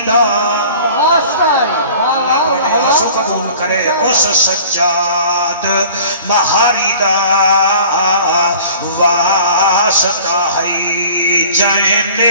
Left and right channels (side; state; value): both; inverted; correlation -0.46